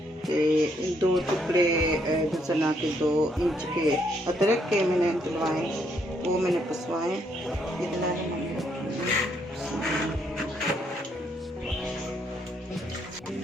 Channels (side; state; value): both; normal; correlation 0.72